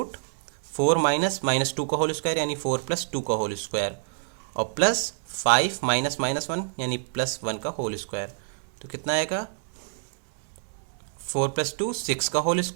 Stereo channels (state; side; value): silent; left; 60 dB below the other